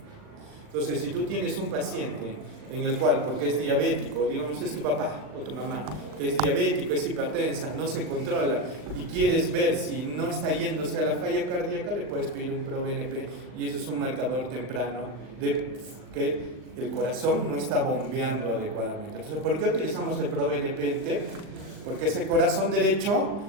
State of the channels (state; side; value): late; left; 39 ms